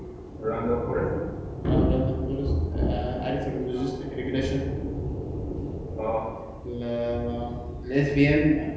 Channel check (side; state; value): both; identical; correlation 1.00